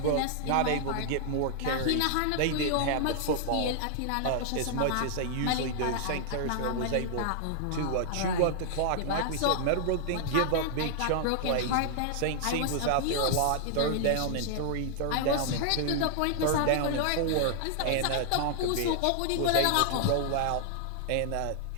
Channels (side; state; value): both; different; correlation 0.00